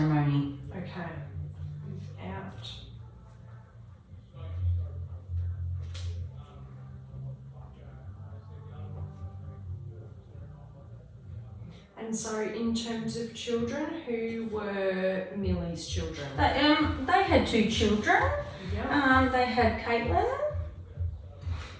Okay. Without. And so, in terms of children, who were Millie's children? They had 2 children. Yeah. They had Caitlin.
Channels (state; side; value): identical; both; correlation 1.00